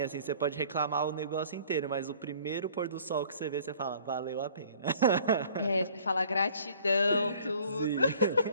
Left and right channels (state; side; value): inverted; both; correlation -0.53